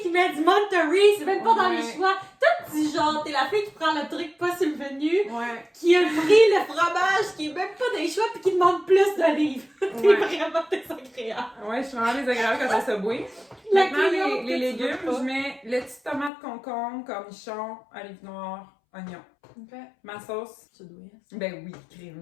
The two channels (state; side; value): drops out; right; at 16.3 s